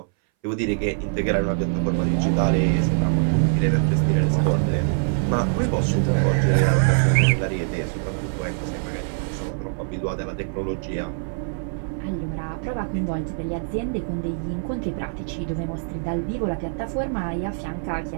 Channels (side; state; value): left; silent; 61 dB below the other